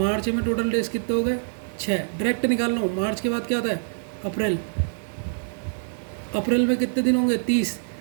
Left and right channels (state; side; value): silent; left; digital silence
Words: में टोटल डेज कितने हो गए? 6। डायरेक्ट निकालना हो। मार्च के बाद क्या आता है? अप्रैल। अप्रैल में कितने दिन होंगे? 30।